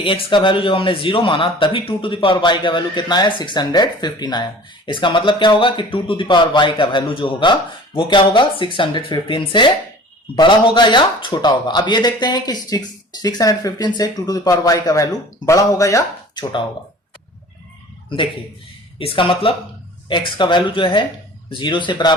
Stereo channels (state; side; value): normal; both; correlation 0.44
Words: x का वैल्यू जब हमने 0 माना तभी 2 टू द पावर y का वैल्यू कितना आया? 615 आया। इसका मतलब क्या होगा कि 2 टू द पावर y का वैल्यू जो होगा वो क्या होगा? 615 से बड़ा होगा या छोटा होगा। अब ये देखते हैं कि 615 से 2 टू द पावर y का वैल्यू बड़ा होगा या छोटा होगा। देखिए इसका मतलब x का वैल्यू जो है 0 के